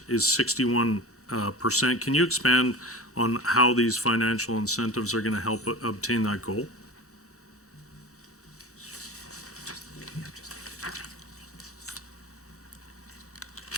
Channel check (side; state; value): both; normal; correlation 0.32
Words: is 61%. Can you expand on how these financial incentives are going to help obtain that goal?